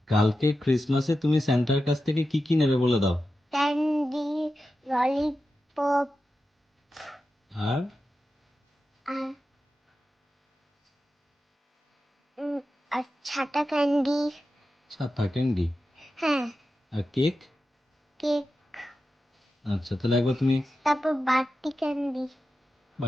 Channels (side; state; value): both; normal; correlation 0.91